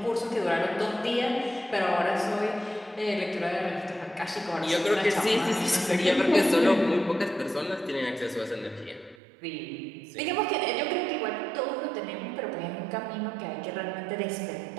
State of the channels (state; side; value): drops out; left; at 9.2 s